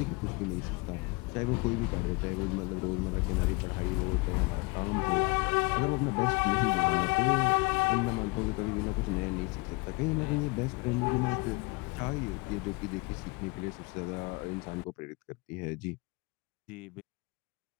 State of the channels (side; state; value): right; quieter; 27.2 dB